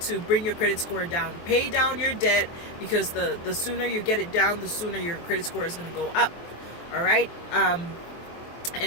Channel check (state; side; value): late; right; 23 ms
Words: bring your credit score down. Pay down your debt, because the sooner you get it down, the sooner your credit score is going to go up. All right,